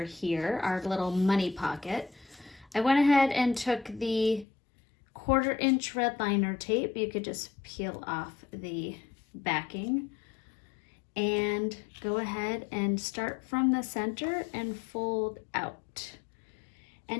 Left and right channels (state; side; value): drops out; right; at 4.5 s